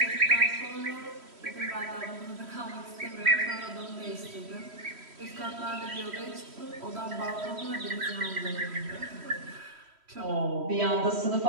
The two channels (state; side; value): late; left; 3.1 ms